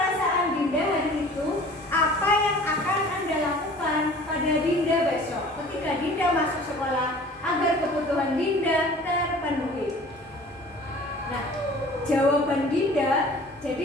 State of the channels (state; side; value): normal; both; correlation 0.47